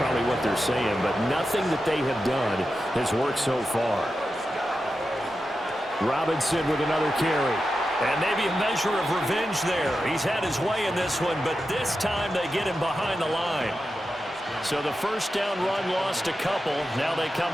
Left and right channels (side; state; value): both; normal; correlation 0.90